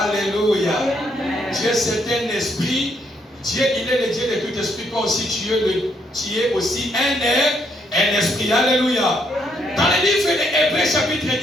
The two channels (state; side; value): normal; both; correlation 0.73